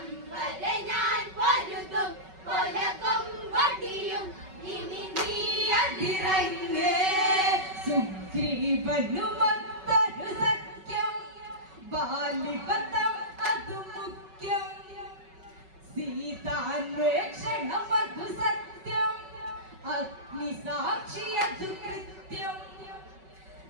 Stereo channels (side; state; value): left; late; 5.3 ms